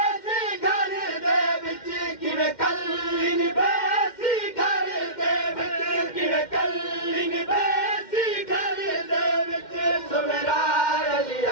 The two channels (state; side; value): late; right; 2.1 ms